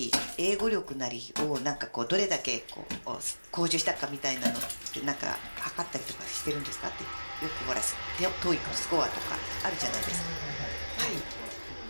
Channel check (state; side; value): inverted; both; correlation -1.00